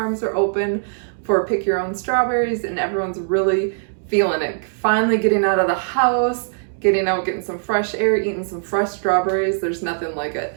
are open for pick your own strawberries, and everyone's really feeling it. Finally getting out of the house, getting out, getting some fresh air, eating some fresh strawberries. There's nothing like it.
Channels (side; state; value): left; silent; digital silence